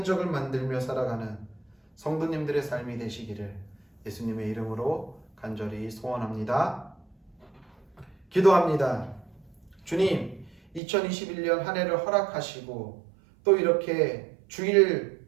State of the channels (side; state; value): left; drops out; at 10.8 s